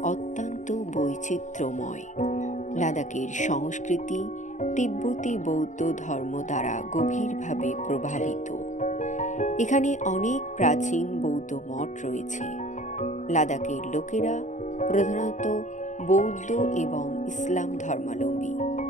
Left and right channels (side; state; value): right; late; 0.36 ms